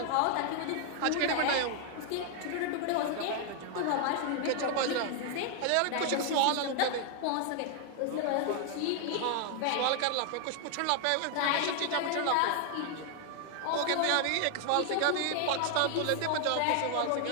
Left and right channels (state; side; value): different; both; correlation 0.00